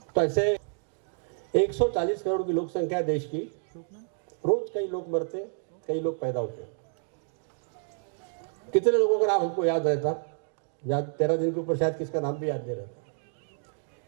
तो ऐसे 140 करोड़ की लोक संख्या है देश की। रोज कई लोग मरते, कई लोग पैदा होते हैं। कितने लोगों का नाम हमको याद रहता? याद 13 दिन के ऊपर शायद किसका नाम भी याद नहीं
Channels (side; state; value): left; silent; 58 dB below the other